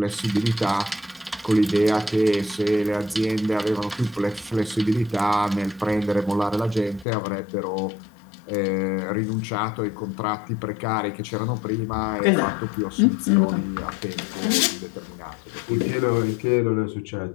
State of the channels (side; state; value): right; drops out; at 7.1 s